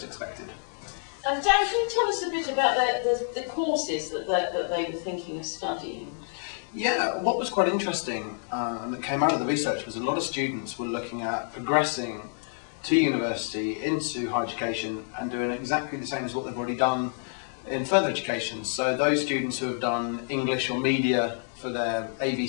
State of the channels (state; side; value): silent; right; digital silence